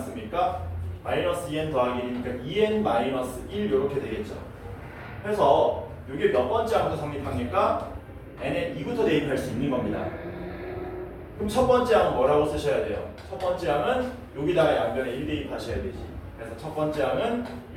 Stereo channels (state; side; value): identical; both; correlation 1.00